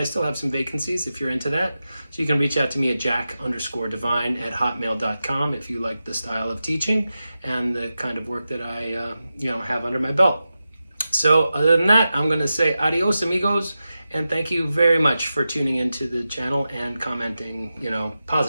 still have some vacancies if you're into that. So you can reach out to me at jack_divine@hotmail.com if you like the style of teaching and the kind of work that I have under my belt. So other than that, I'm going to say adios, amigos, and thank you very much for tuning into the channel and commenting,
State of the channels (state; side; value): inverted; both; correlation -0.92